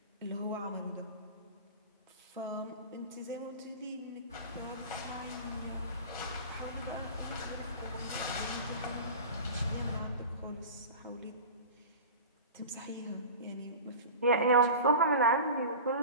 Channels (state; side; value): inverted; both; correlation -0.34